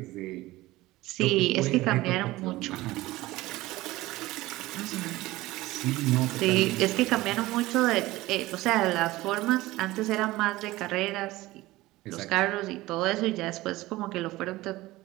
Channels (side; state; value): left; quieter; 18.4 dB